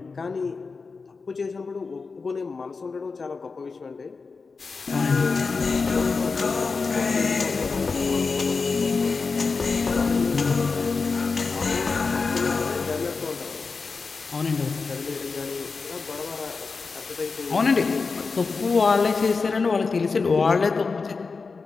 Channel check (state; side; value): quieter; right; 4.5 dB